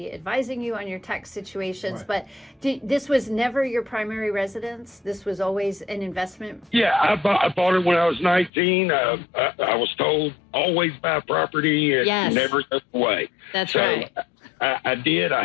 advising you on your tax situations, Right. but this was never your primary residence? This was always an investment? Yeah, I bought it when I was 19. I was told always buy property and Yes. never go away. That's So right. I did.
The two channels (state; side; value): drops out; right; at 8.5 s